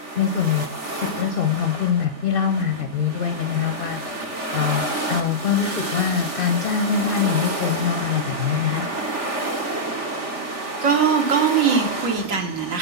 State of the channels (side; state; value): left; late; 3.4 ms